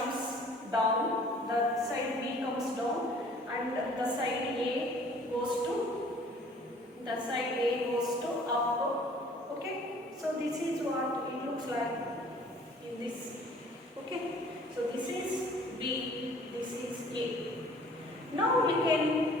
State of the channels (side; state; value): both; normal; correlation 0.53